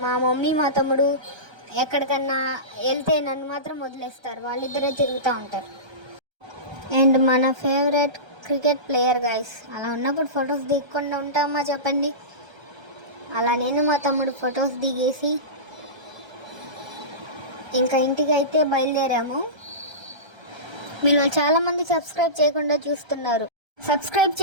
మా మమ్మీ మా తమ్ముడు ఎక్కడికన్నా వెళ్తే నన్ను మాత్రం వదిలేస్తారు, వాళ్ళిద్దరే తిరుగుతూ ఉంటారు. అండ్ మన ఫేవరెట్ క్రికెట్ ప్లేయర్ గైస్. అలా ఉన్నప్పుడు ఫొటోస్ దిగకుండా ఉంటామా చెప్పండి. అలా నేను మా తమ్ముడు ఫొటోస్ దిగేసి ఇంకా ఇంటికి అయితే బయలుదేరాము. మీరు చాలామంది సబ్స్క్రైబ్ చేయకుండా చూస్తున్నారు, సబ్స్క్రైబ్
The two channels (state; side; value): late; left; 1.3 ms